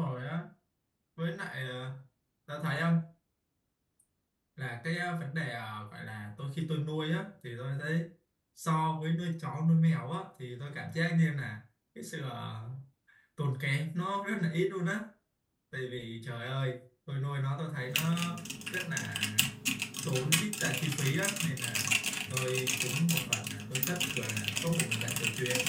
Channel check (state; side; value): identical; both; correlation 1.00